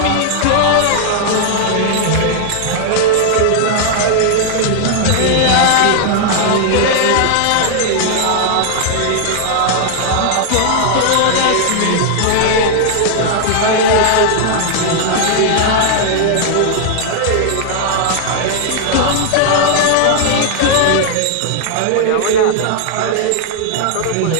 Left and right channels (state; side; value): different; both; correlation 0.00